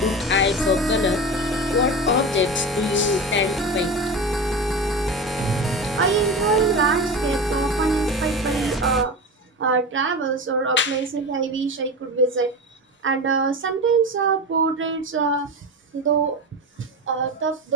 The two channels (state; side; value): normal; both; correlation 0.25